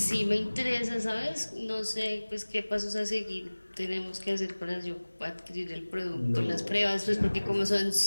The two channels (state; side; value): inverted; both; correlation -1.00